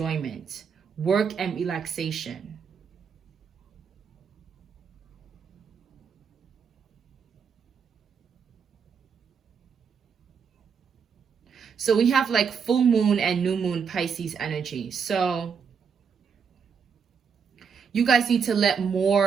work and relaxation. So we have like full moon and new moon Pisces energy. So you guys need to let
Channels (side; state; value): left; quieter; 6.4 dB